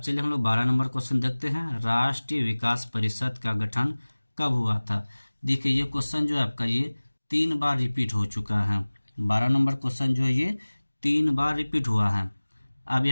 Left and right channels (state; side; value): inverted; both; correlation -1.00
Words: हम लोग 12 नंबर क्वेश्चन देखते हैं। राष्ट्रीय विकास परिषद का गठन कब हुआ था? देखिए ये क्वेश्चन जो है आपका, ये 3 बार रिपीट हो चुका है। 12 नंबर क्वेश्चन जो है ये 3 बार रिपीट हुआ है। अब